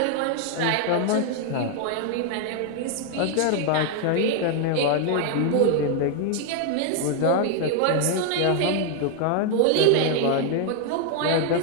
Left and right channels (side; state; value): both; different; correlation 0.00